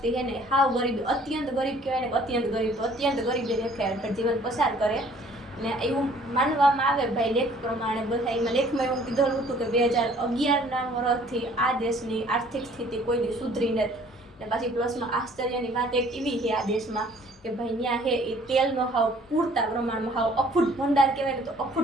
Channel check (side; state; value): both; normal; correlation 0.56